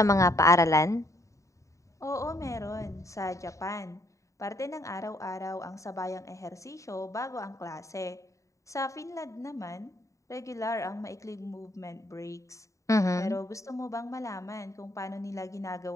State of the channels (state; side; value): late; right; 0.15 ms